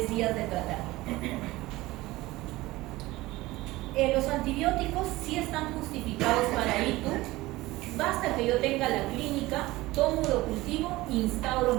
días de tratamiento. Los antibióticos sí están justificados para ITU. Basta que yo tenga la clínica, tomo urocultivo, instauro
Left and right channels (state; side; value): quieter; left; 19.0 dB